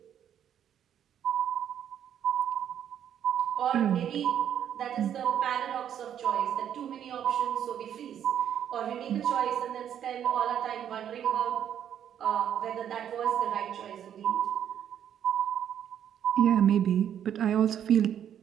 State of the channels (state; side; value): quieter; left; 9.6 dB